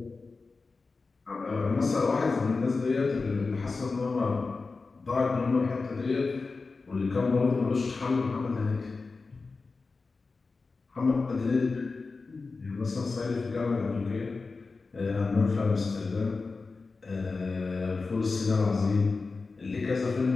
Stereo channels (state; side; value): quieter; right; 4.1 dB